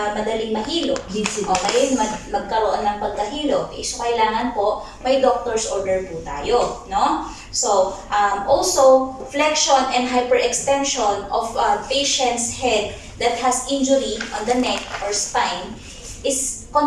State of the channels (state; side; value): identical; both; correlation 1.00